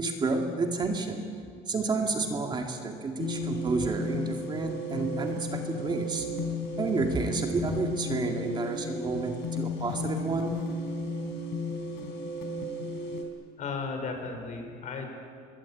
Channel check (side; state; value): both; normal; correlation 0.56